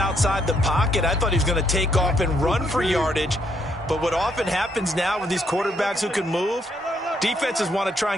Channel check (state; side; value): normal; both; correlation 0.73